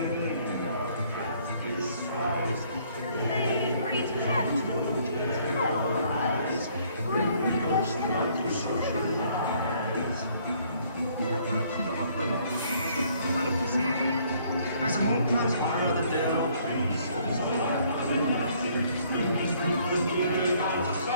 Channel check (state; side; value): inverted; both; correlation -0.63